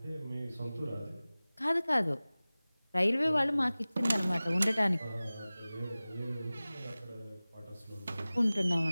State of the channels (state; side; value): inverted; both; correlation -0.98